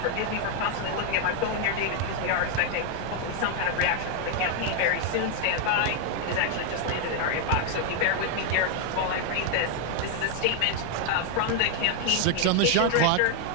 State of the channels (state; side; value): different; both; correlation 0.01